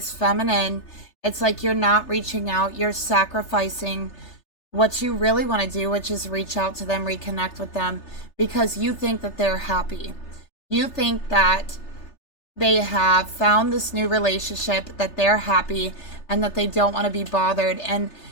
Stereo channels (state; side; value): late; right; 3.3 ms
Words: feminine, it's like you're not reaching out. You're sacrificing what you really want to do, which is reach out to them, reconnect with them, because you think that they're happy. You think that they have found this new relationship, that they're happy, and that they don't want to be bothered. And